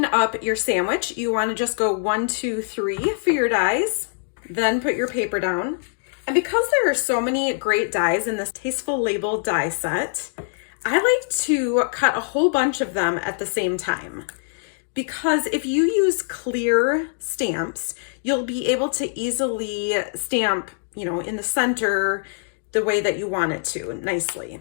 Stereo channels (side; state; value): right; silent; digital silence